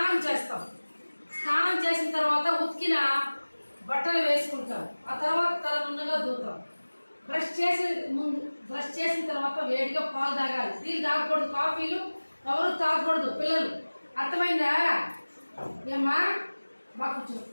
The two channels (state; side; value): inverted; both; correlation -1.00